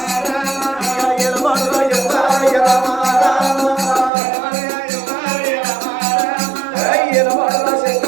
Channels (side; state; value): left; drops out; at 4.1 s